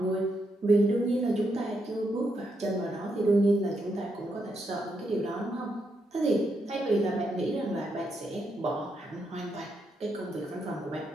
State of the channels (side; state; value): both; normal; correlation 0.80